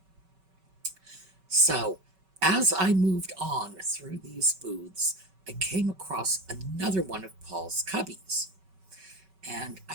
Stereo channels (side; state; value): left; late; 5.3 ms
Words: So as I moved on through these booths, I came across another one of Paul's cubbies. And